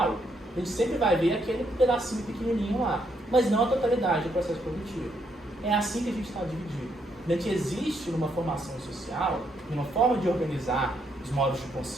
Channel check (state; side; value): normal; both; correlation 0.75